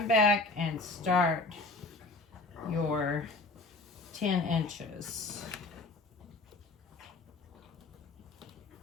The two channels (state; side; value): quieter; right; 3.3 dB